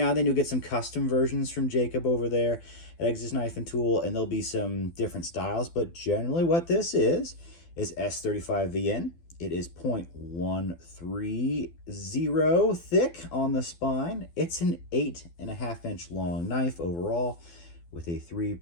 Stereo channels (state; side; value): late; right; 12 ms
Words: and then you'll get some custom versions from Jacob over there at Exodus Knife and Tool, and there'll be some different styles, but generally what this is S35VN. It is 0.130 thick on the spine. It's an 8.5 inch long knife overall with a